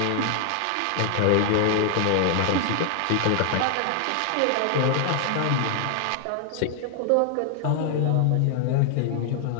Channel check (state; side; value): different; both; correlation 0.00